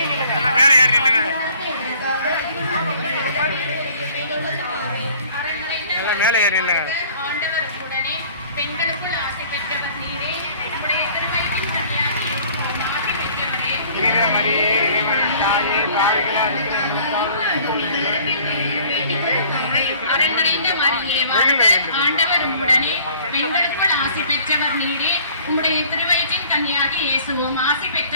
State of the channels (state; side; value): inverted; both; correlation -0.53